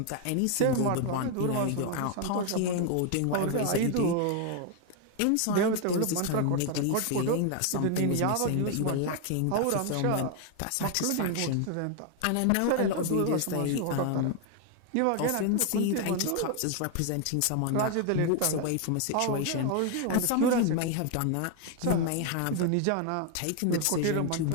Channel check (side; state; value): both; different; correlation 0.01